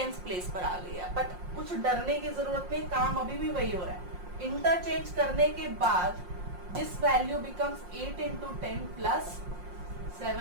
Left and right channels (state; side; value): late; left; 5.6 ms